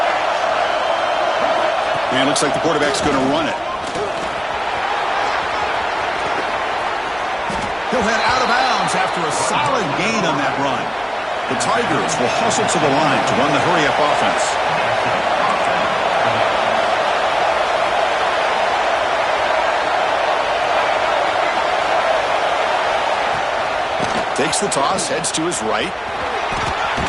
And looks like the quarterback's going to run it. He'll head out of bounds after a solid gain on that run. The Tigers will hustle to the line to run the hurry-up offense. Takes the toss, heads to his right.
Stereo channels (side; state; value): both; identical; correlation 1.00